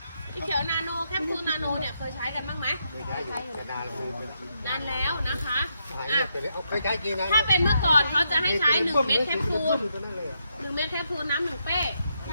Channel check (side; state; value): both; inverted; correlation -0.80